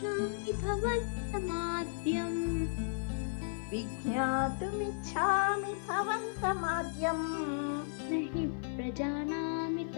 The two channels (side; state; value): right; silent; digital silence